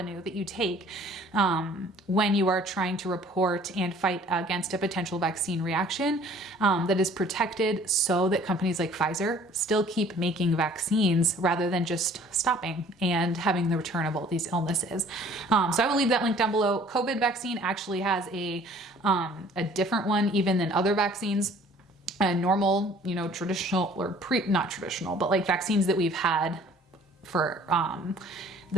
that you take when you are trying to report and fight against a potential vaccine reaction that is protected so that companies like Pfizer still keep making vaccines rather than just stopping and having the return of all these illnesses. So I will leave that link down below. COVID vaccine actually has a different one even than other vaccines. Normal, you know, traditional or not traditional, but like vaccines that we've had for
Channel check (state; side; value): normal; both; correlation 0.53